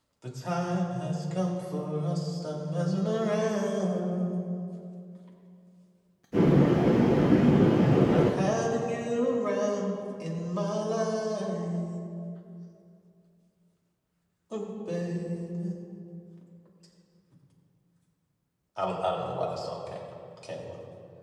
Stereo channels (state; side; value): identical; both; correlation 1.00